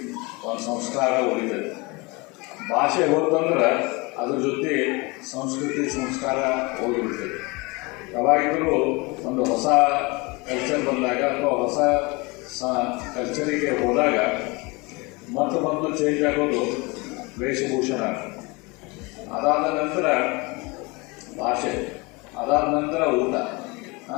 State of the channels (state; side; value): quieter; right; 26.3 dB